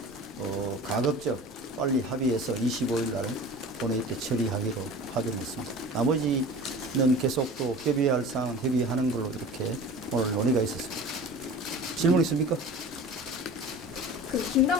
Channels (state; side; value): normal; both; correlation 0.38